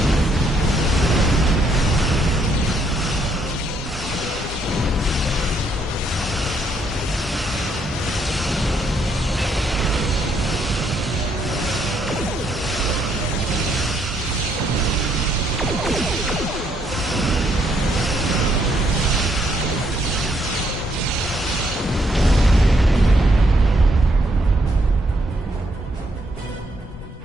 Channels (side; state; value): both; normal; correlation 0.72